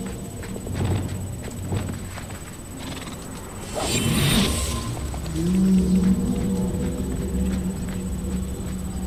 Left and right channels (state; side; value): identical; both; correlation 1.00